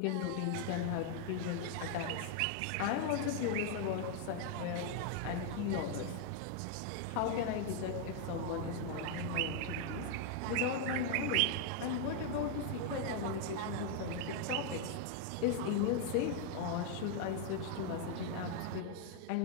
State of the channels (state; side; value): different; both; correlation 0.00